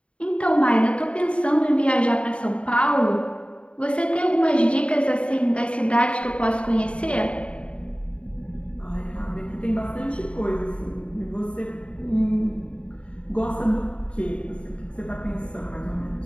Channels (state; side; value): late; right; 0.059 ms